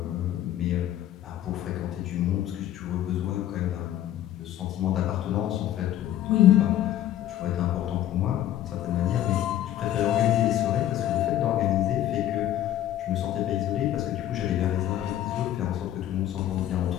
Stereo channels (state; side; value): quieter; right; 12.2 dB